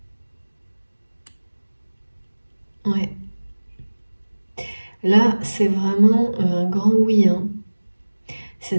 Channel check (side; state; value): both; inverted; correlation -1.00